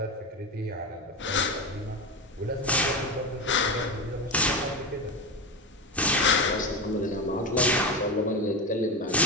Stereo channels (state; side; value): normal; both; correlation 0.19